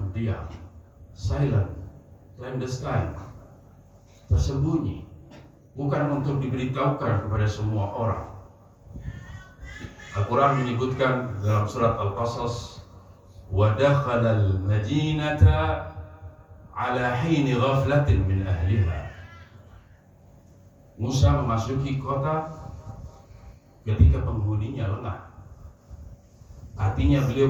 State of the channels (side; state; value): both; identical; correlation 1.00